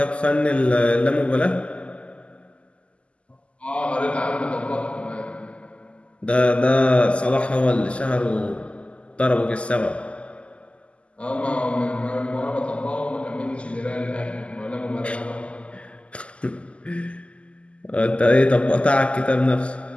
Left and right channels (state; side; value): late; right; 0.057 ms